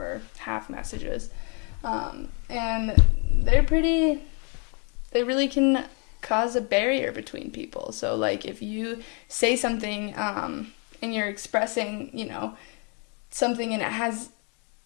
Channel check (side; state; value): right; quieter; 36.5 dB